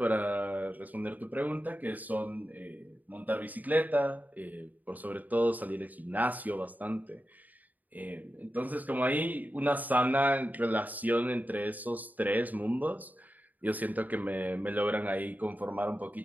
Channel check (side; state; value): left; late; 0.080 ms